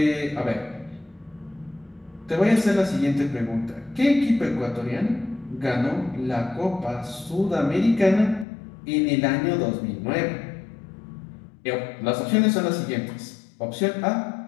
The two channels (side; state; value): right; drops out; at 8.5 s